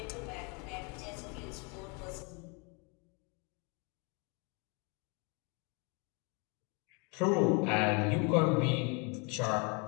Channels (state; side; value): quieter; right; 32.8 dB